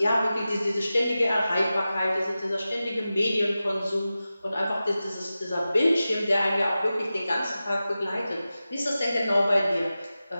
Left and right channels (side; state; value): both; inverted; correlation -0.94